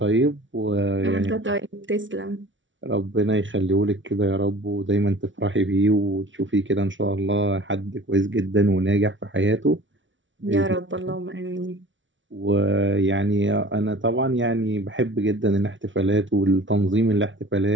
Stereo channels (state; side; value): late; left; 0.56 ms